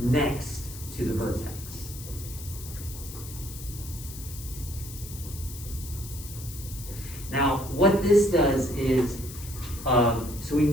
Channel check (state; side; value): noise; left; hiss, 13 dB below the sound